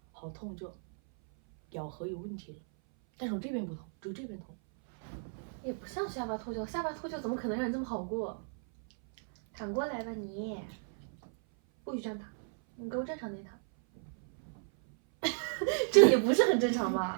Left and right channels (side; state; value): left; silent; 55 dB below the other